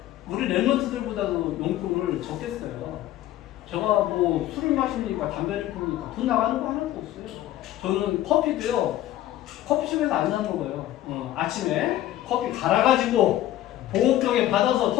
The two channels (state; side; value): quieter; right; 13.7 dB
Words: 우리 랩런트들보다도 용돈을 적게 써요. 제가 뭐 술을 마시니까 담배를 피우니까 돈 나가는 거 하나도 없어요. 저는 커피도요, 커피숍에서 안 사 먹어요. 아침에 커피 갈아가지고 보온병에 받아서